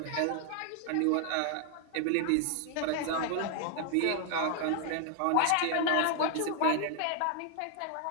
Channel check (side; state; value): both; different; correlation 0.00